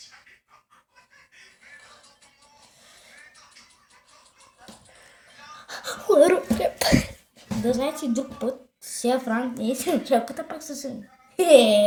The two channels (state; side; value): identical; both; correlation 1.00